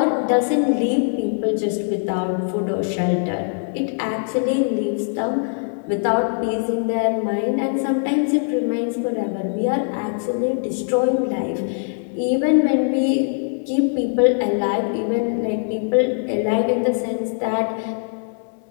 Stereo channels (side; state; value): right; silent; 64 dB below the other